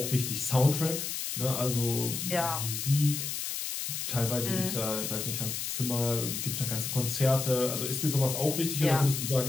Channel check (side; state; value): left; noise; hiss, 4 dB below the sound